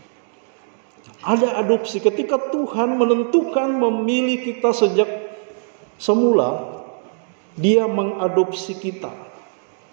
Ada adopsi. Ketika Tuhan menentukan memilih kita sejak semula, Dia mengadopsi kita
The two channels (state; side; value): silent; left; digital silence